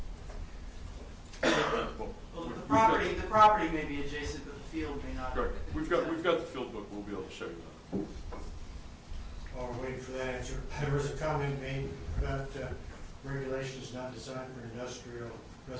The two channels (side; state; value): both; identical; correlation 1.00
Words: Well, The property may be adjacent, but the field may not. Correct. We've got the field book. We'll be able to show you that. While we're waiting for that answer, there was a comment made about regulations not designed for industrial